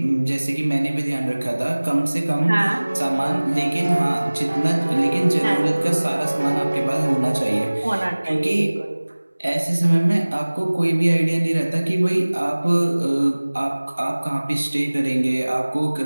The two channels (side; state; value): both; inverted; correlation -1.00